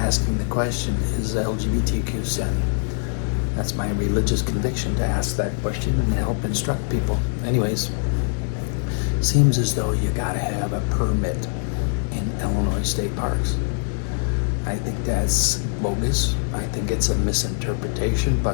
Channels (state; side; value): silent; right; 63 dB below the other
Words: the question, is LGBTQ sin? That's my religious conviction, to ask that question and help instruct people. Anyways, seems as though you gotta have a permit in Illinois state parks. I think that's bogus. I think it's a misinterpretation,